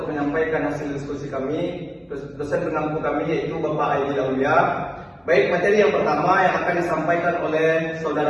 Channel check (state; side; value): identical; both; correlation 1.00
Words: menyampaikan hasil diskusi kami. Dosen pengampu kami yaitu Bapak Aidil Aulia. Baik, materi yang pertama yang akan disampaikan oleh